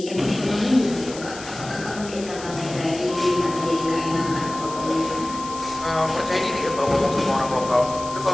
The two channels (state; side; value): noise; left; hiss, 14 dB below the sound